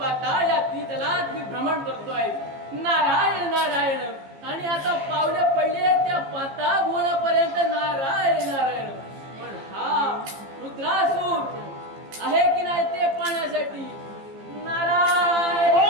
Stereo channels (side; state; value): left; late; 15 ms